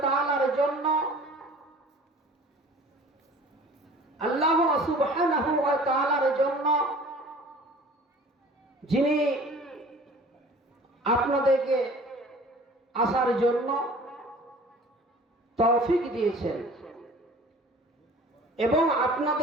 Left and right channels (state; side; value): normal; both; correlation 0.46